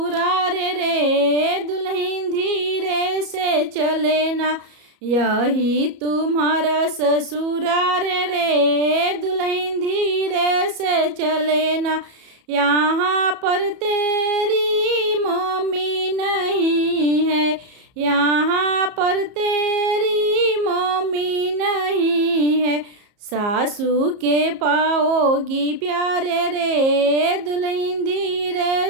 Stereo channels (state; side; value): late; left; 34 ms